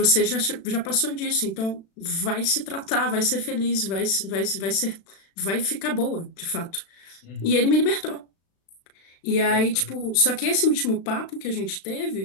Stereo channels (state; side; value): late; right; 36 ms